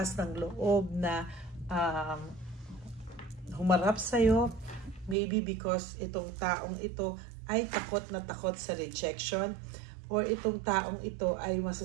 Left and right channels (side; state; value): left; drops out; at 5.2 s